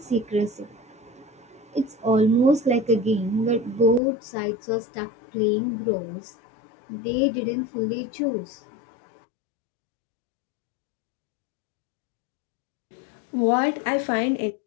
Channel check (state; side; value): drops out; right; at 4.0 s